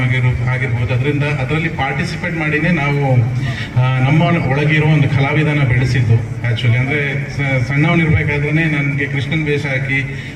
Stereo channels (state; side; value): identical; both; correlation 1.00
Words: ಆಗಿರ್ಬೋದು, ಅದರಲ್ಲಿ ಪಾರ್ಟಿಸಿಪೇಟ್ ಮಾಡಿನೇ ನಾವು ನಮ್ಮ ಒಳಗಿರೋ ಒಂದು ಕಲಾವಿದನ ಬೆಳೆಸಿದ್ದು. ಆ್ಯಕ್ಚುಲಿ ಅಂದರೆ ಸಣ್ಣವನಿರ್ಬೇಕಾದ್ರೆ ನನಗೆ ಕೃಷ್ಣನ್ ವೇಷ ಹಾಕಿ,